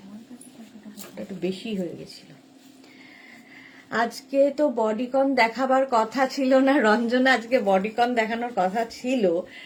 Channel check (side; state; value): both; identical; correlation 1.00